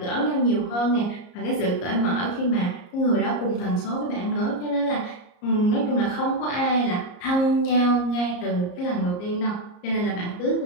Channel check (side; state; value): right; late; 34 ms